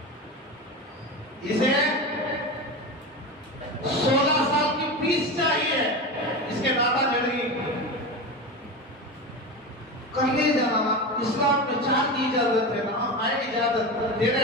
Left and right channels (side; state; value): both; normal; correlation 0.23